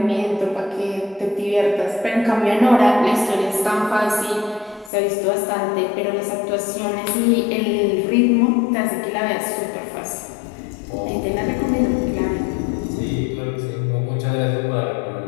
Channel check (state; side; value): drops out; right; at 4.9 s